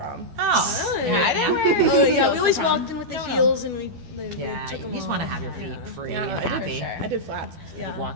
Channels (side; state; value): left; late; 12 ms